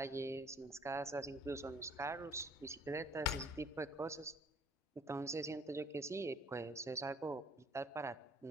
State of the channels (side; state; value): both; normal; correlation 0.57